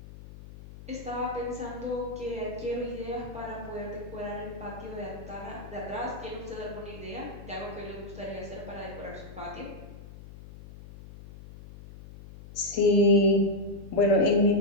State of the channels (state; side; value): noise; left; hum, 16 dB below the sound